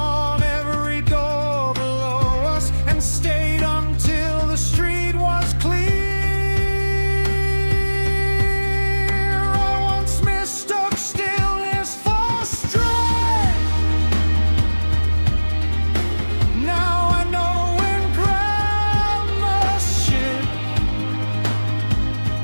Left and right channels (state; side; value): inverted; both; correlation -1.00